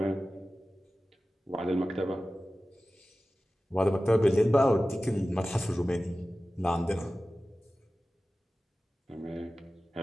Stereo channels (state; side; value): normal; both; correlation 0.95